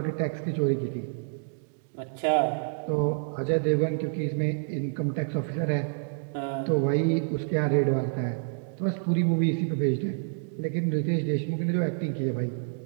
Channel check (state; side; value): silent; left; digital silence